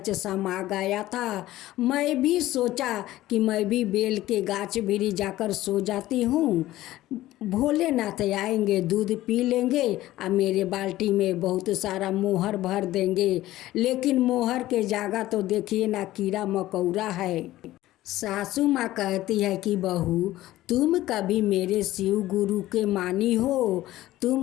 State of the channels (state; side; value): quieter; right; 15.6 dB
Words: समा गया था। मैं भी सोचा कि मैं भी बेल के गाछ भीरी जाकर सो जाती हूँ, भोलेनाथ आएंगे, दूध पी लेंगे और मेरे बाल्टी में बहुत सारा मोहर भर देंगे। लेकिन मोहर के जगह तो देखिए ना कीड़ा मकोड़ा है। सासू माँ कहती है कि बहू, तुम कभी मेरे शिव गुरु के मानी हो?